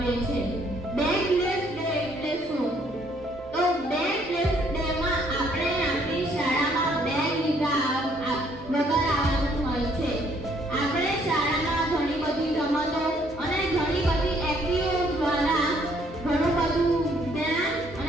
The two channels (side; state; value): both; normal; correlation 0.65